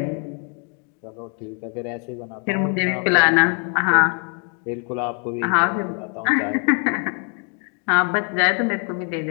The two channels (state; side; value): quieter; right; 39.3 dB